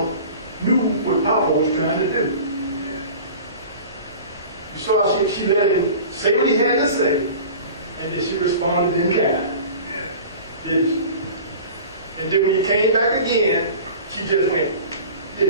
knew what Papa was trying to do. You saw how she let him say what he had to say, and then she responded in kind. Did she? And then when you came back again, she just went,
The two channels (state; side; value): inverted; both; correlation -0.39